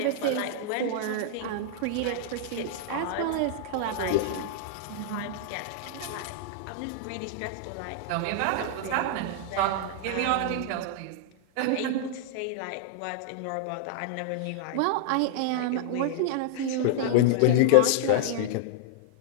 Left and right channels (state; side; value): different; both; correlation -0.01